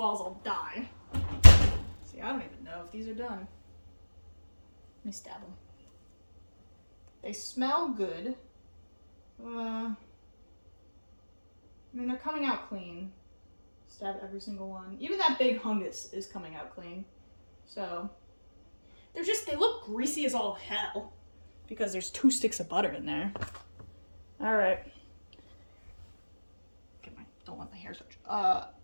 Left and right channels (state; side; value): inverted; both; correlation -1.00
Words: I'll die. See, I don't even know if these are done. Let me stab them. They smell good. I mean, they're coming out clean. Stab every single one. Even that big hungus is coming out clean. So, they look greasy as all hell. Because there's 2 sticks of butter in there. Alright. Don't let my hair touch.